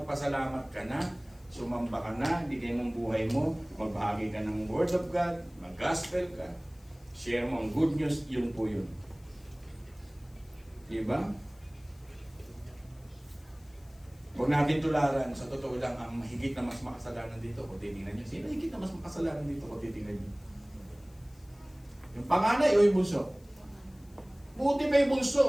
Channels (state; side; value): noise; left; hiss, 29 dB below the sound